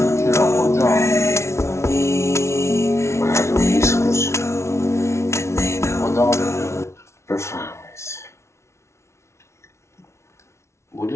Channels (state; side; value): late; right; 0.13 ms